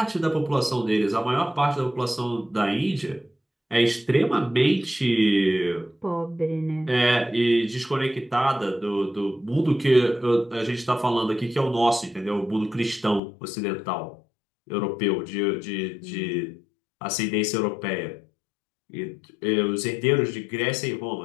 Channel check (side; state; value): right; drops out; at 13.2 s